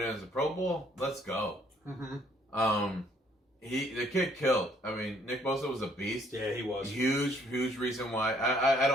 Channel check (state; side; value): normal; both; correlation 0.64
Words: in as a Pro Bowl, let's go. Mm-hmm. The kid killed. Nick Bosa was a beast. Yeah, he was. Huge reason why. I